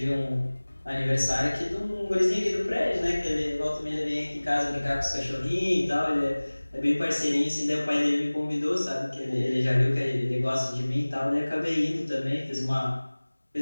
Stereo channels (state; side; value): inverted; both; correlation -1.00